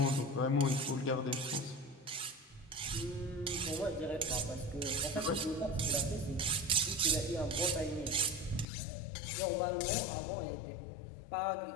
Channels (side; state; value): right; drops out; at 8.7 s